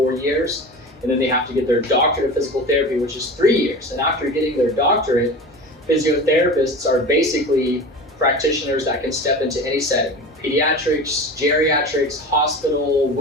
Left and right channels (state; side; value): normal; both; correlation 0.33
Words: years, and then they have to get their doctorate of physical therapy, which is 3 years. And after getting their doctorate, physiotherapists are basically practitioners that can step into any setting: pediatrics, geriatrics, hospital,